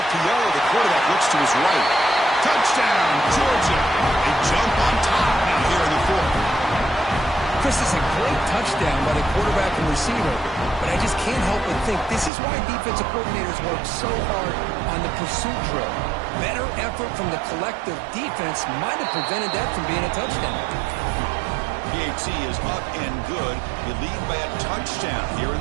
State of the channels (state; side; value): drops out; left; at 12.3 s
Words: The quarterback looks to his right. Touchdown, Georgia. They jump on top now here in the 4th. Chris, is a great touchdown by the quarterback and receiver, but I just can't help but think this is why defensive coordinators work so hard on the pursuit drill. Better effort from the collective defense might have prevented that from being a touchdown. PAT is up and good. You lead by a touchdown here in